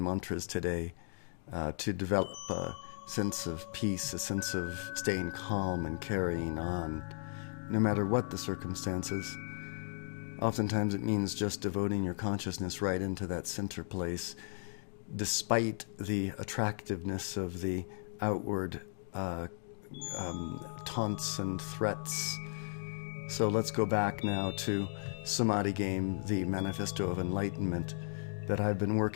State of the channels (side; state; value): right; silent; digital silence